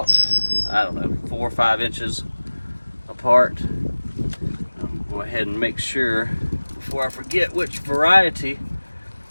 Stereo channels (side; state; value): both; inverted; correlation -1.00